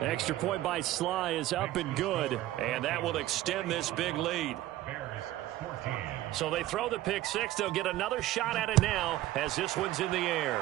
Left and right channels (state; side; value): quieter; left; 15.0 dB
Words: Extra point by Sly is up and good. And that will extend this big lead. So they throw the pick six. They'll get another shot at it now as this one's in the